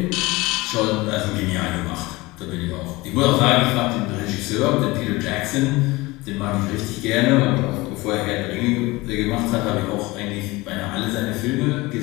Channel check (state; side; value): quieter; right; 21.7 dB